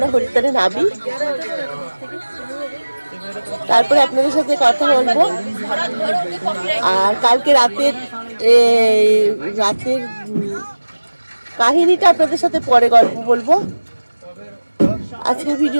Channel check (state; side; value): inverted; both; correlation -1.00